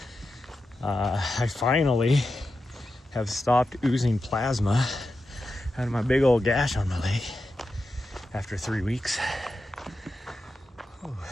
I finally have stopped oozing plasma out of my big old gash on my leg after 3 weeks. Ooh.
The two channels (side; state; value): both; normal; correlation 0.90